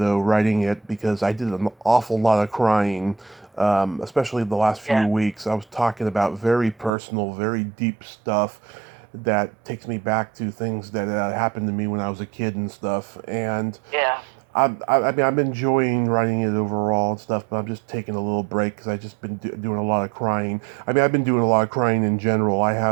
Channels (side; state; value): left; drops out; at 6.9 s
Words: writing it because I did an awful lot of crying, especially the last few Yeah. weeks. I was talking about very personal, very deep stuff that takes me back to things that happened to me when I was a kid and stuff. And Yeah. I mean, I'm enjoying writing it overall and stuff, but I'm just taking a little break because I've just been doing a lot of crying. I mean, I've been doing a lot of crying in general. I